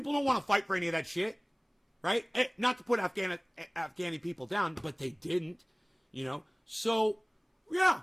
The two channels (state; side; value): identical; both; correlation 1.00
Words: don't want to fight for any of that shit. Right? Not to put Afghani people down, but they didn't. You know? So, yeah.